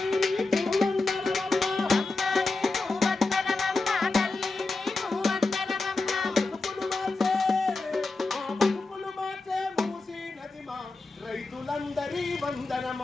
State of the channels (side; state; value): right; quieter; 3.5 dB